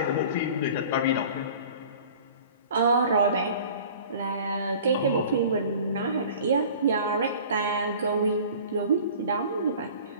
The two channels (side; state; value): both; inverted; correlation -0.45